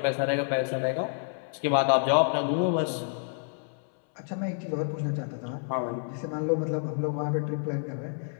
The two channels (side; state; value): right; silent; 59 dB below the other